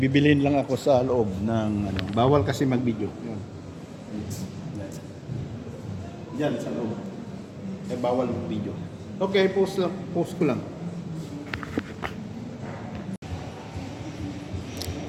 lang ako sa loob ng bawal kasi mag-video. Yan. Diyan sa loob. Bawal mag-video. Okay, post ko lang.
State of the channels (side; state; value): both; identical; correlation 1.00